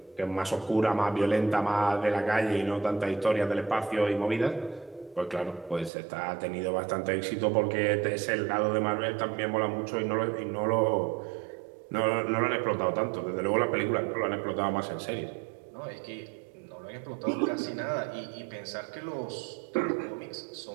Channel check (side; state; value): left; drops out; at 5.9 s